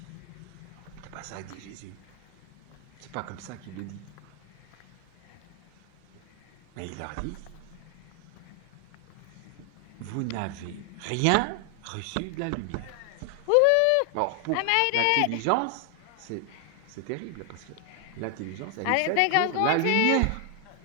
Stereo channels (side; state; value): both; different; correlation 0.00